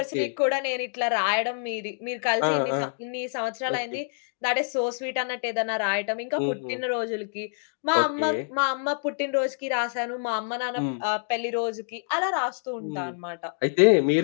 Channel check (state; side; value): silent; right; digital silence